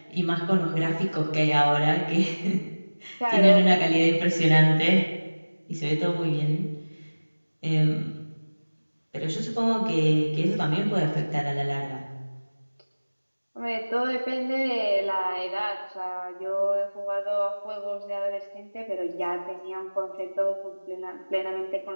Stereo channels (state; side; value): inverted; both; correlation -1.00